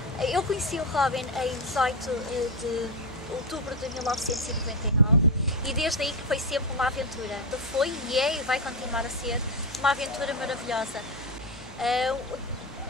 Eu conheci o Robin em 18 de outubro de 1999 e desde aí que foi sempre uma aventura. Foi e é e vai continuar a ser uma aventura maravilhosa.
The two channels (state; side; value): normal; both; correlation 0.12